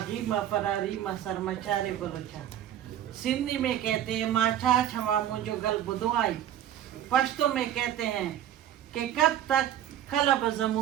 माँ फरारी माँ सरमचारे बलोचा। सिंधी में कहते हैं माछा छमा मुझो गल बुदवाई। पश्तो में कहते हैं कि कब तक कलब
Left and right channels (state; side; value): quieter; left; 11.2 dB